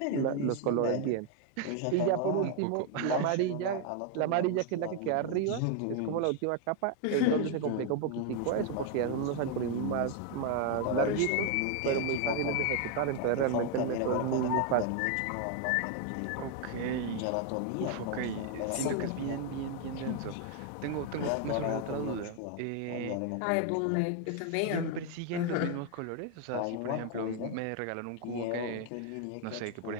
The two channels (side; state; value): both; different; correlation 0.01